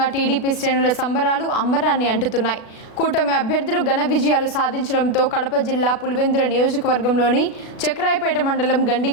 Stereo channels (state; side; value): late; right; 36 ms